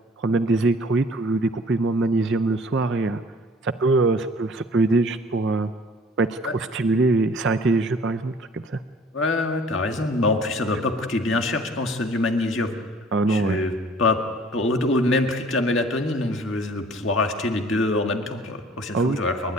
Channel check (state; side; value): normal; both; correlation 0.52